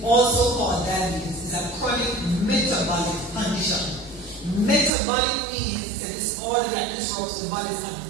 also called diabetes, is a chronic metabolic condition. Metabolic means it's a disorder that disrupts the body's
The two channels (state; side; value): drops out; left; at 4.9 s